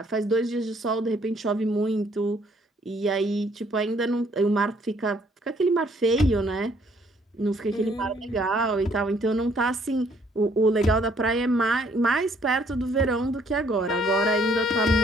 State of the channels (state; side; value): normal; both; correlation 0.64